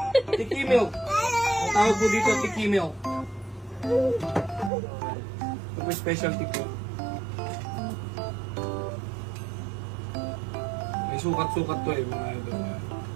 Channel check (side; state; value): left; drops out; at 4.7 s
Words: Tiki milk. Ang tawag po dito, tiki milk. Ito po specialty po. May sukat-sukat to eh, mga idol.